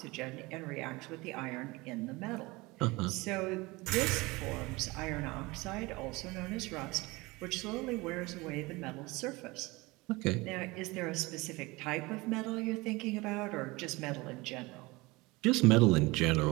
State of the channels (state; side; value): quieter; left; 23.0 dB